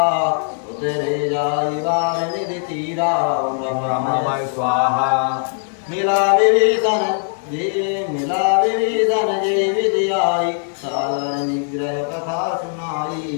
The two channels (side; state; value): right; silent; digital silence